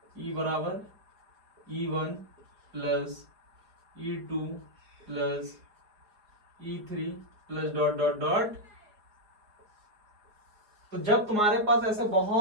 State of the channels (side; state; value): left; late; 4.8 ms